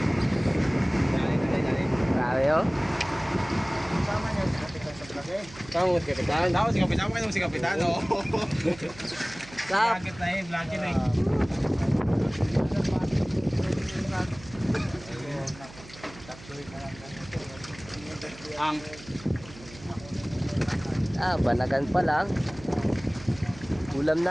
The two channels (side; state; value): right; noise; hum, 18 dB below the sound